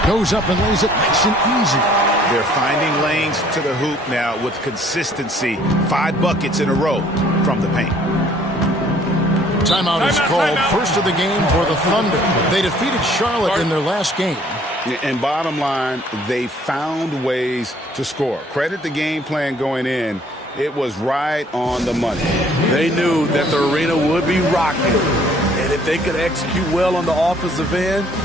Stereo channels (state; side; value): normal; both; correlation 0.59